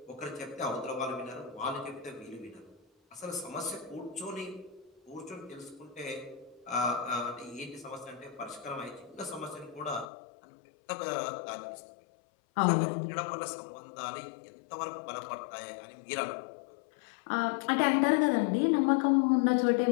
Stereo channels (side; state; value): right; drops out; at 10.1 s